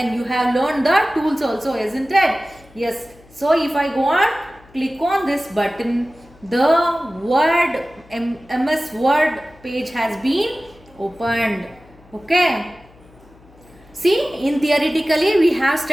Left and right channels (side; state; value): left; noise; hum, 26 dB below the sound